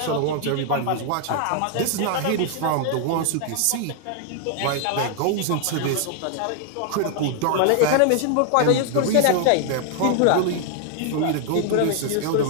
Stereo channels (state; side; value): different; both; correlation 0.00